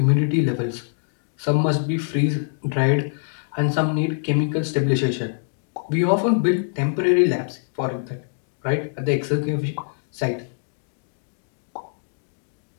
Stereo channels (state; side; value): silent; right; digital silence